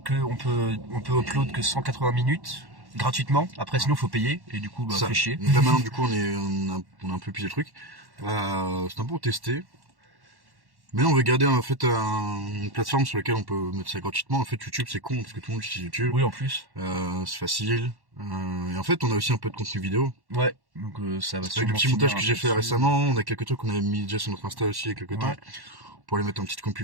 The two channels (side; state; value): left; late; 1.1 ms